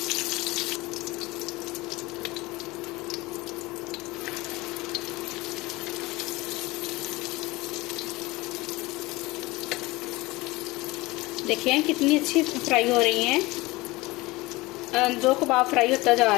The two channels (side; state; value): right; quieter; 21.4 dB